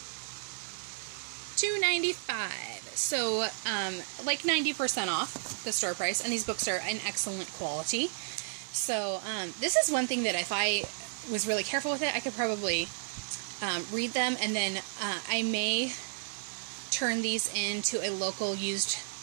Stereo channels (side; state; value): left; silent; 56 dB below the other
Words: $2.95. So like 90% off the store price, and these books are in excellent quality. So this is one thing that if I was really careful with it, I could probably read them, and then I may turn these into a local used